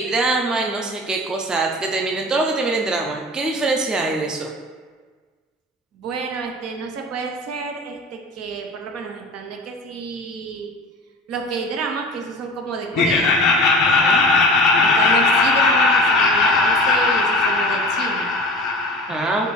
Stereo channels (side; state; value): both; normal; correlation 0.37